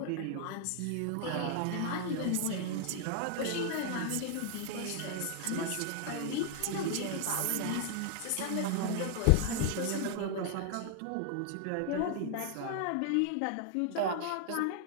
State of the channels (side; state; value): both; different; correlation 0.00